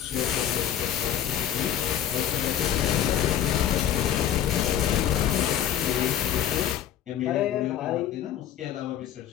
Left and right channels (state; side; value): quieter; right; 10.5 dB